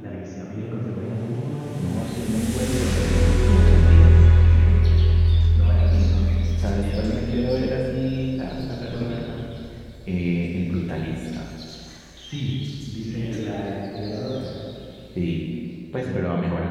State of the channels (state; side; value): identical; both; correlation 1.00